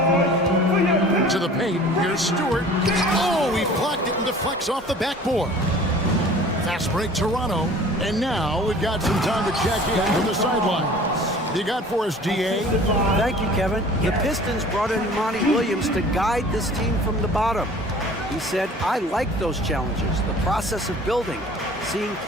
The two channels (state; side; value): normal; both; correlation 0.46